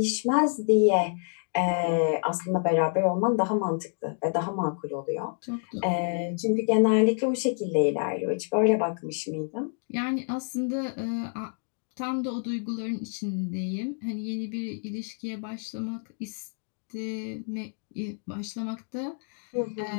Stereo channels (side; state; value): right; silent; 57 dB below the other